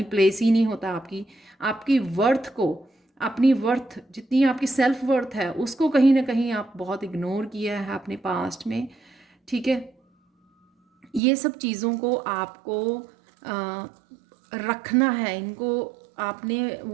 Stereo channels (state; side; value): drops out; left; at 11.2 s